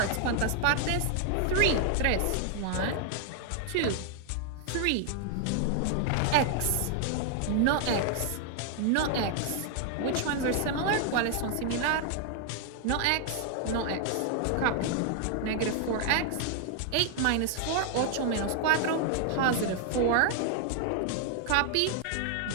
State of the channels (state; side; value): different; both; correlation 0.00